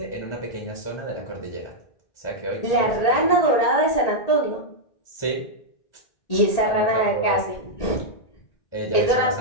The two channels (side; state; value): right; late; 1.8 ms